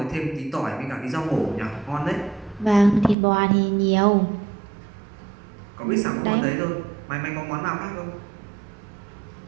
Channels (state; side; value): drops out; left; at 3.2 s